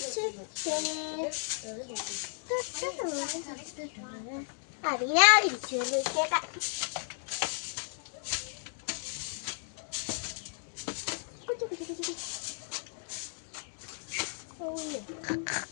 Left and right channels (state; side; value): silent; right; 55 dB below the other